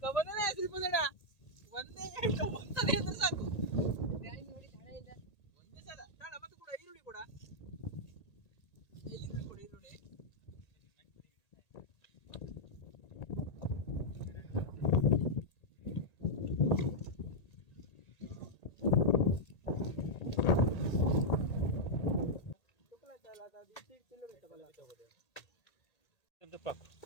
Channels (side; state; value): right; late; 1.8 ms